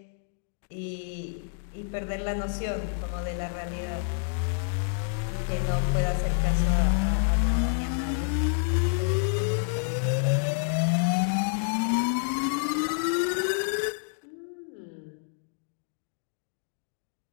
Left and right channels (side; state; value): right; silent; digital silence